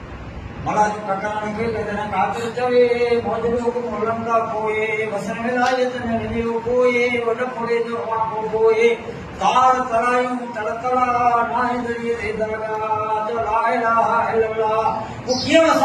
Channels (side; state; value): both; identical; correlation 1.00